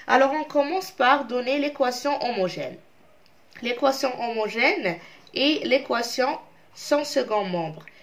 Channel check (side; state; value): both; identical; correlation 1.00